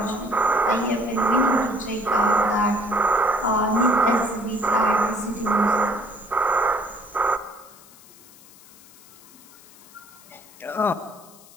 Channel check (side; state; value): left; noise; hiss, 23 dB below the sound